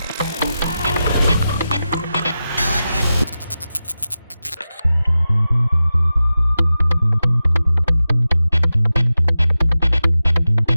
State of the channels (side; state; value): both; inverted; correlation -0.93